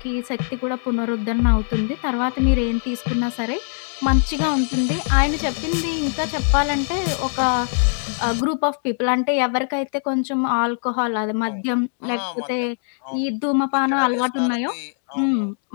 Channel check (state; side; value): silent; right; 64 dB below the other